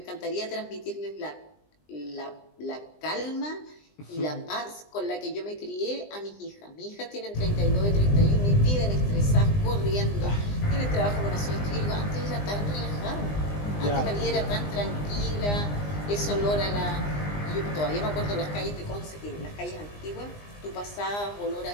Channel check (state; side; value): late; right; 20 ms